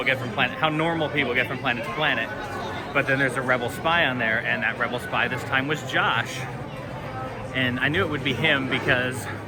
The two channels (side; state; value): both; identical; correlation 1.00